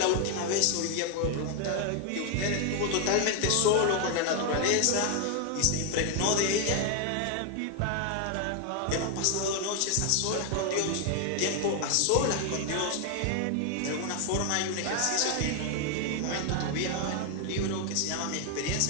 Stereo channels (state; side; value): different; both; correlation 0.01